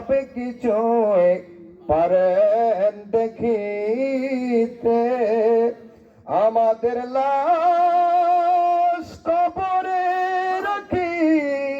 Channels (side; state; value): both; identical; correlation 1.00